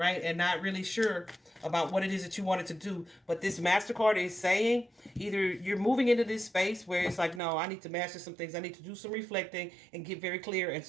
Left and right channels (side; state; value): left; drops out; at 7.4 s